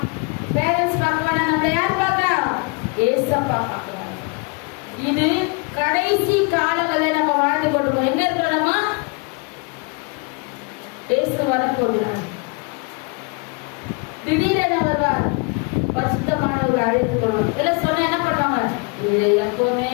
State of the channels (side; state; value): right; quieter; 31.9 dB